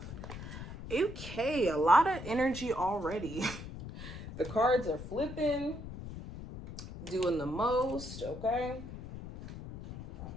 Okay, a lot of energy already. The cards are flipping, doing the most, okay?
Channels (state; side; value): noise; left; rumble, 10 dB below the sound